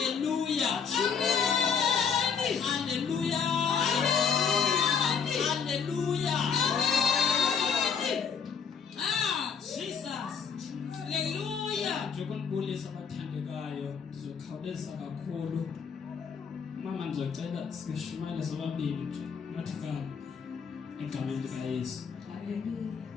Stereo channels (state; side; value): quieter; right; 6.5 dB